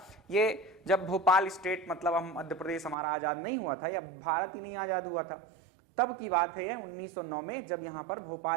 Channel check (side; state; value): left; drops out; at 3.0 s